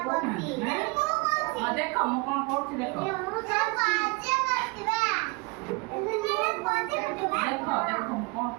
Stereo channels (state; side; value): quieter; left; 27.9 dB